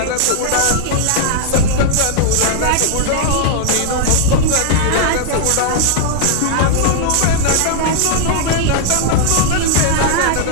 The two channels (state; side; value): different; both; correlation -0.01